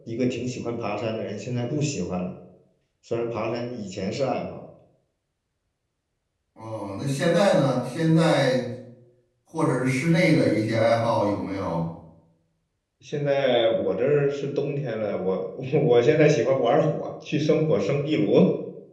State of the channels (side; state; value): both; identical; correlation 1.00